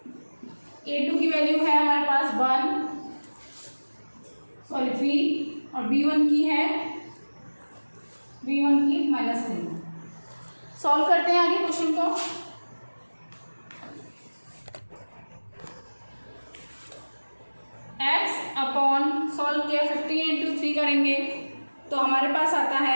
A2 की वैल्यू है हमारे पास 3 और B1 की -3। सॉल्व करते हैं आगे क्वेश्चन को। x अपॉन सॉल्व किया 15 × 3 करेंगे तो हमारे पास आता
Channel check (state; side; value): inverted; both; correlation -1.00